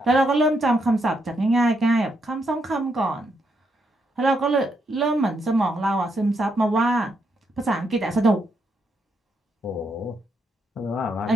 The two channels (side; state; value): both; normal; correlation 0.78